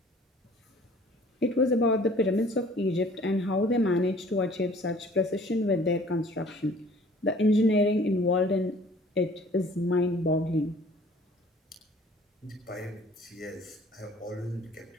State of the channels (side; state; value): both; normal; correlation 0.52